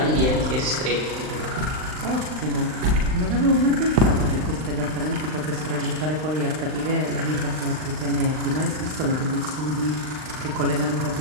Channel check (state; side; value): late; left; 39 ms